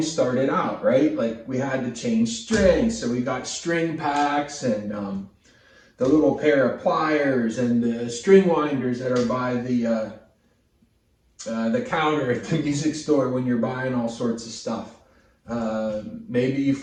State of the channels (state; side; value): identical; both; correlation 1.00